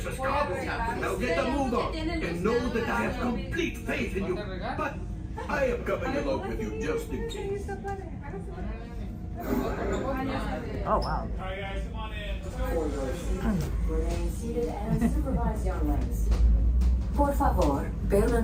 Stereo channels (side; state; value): both; identical; correlation 1.00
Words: cargo. Now get a move on and know that I have complete faith in you. But I am coming along with you just in case. Oh wow. Alright guys, come on in. Remain seated and supervise young legs. Por favor,